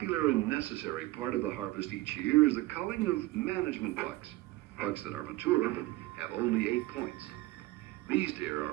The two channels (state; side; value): quieter; left; 18.7 dB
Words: and necessary part of the harvest each year is the culling of management bucks. Bucks that are mature but have only 8 points. These deer